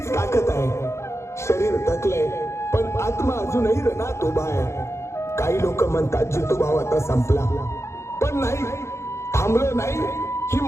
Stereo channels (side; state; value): right; late; 0.13 ms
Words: ताकद आहे. शरीर थकलंय पण आत्मा अजूनही रणात उभा आहे. काही लोक म्हणतात जितू भाव आता संपला, पण नाही, थांबलो नाही. ही